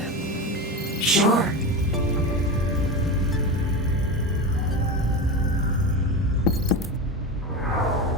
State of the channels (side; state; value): both; normal; correlation 0.23